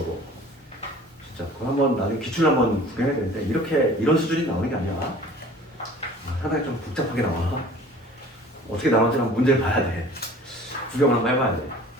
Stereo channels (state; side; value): normal; both; correlation 0.46